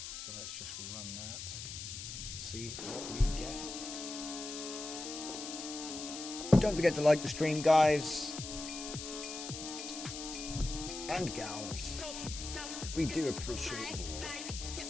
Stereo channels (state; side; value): noise; left; hiss, 8 dB below the sound